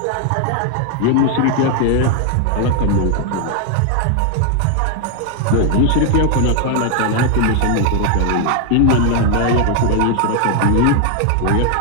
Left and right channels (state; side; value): different; both; correlation 0.00